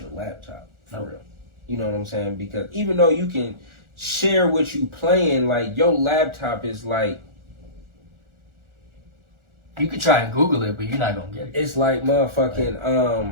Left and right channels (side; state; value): left; late; 1.4 ms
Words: laptop for real. You know what I'm saying? Because even though you can share what you playing, like your laptop is like, You could try and Google it, but you're not gonna get it. it's like motherfucking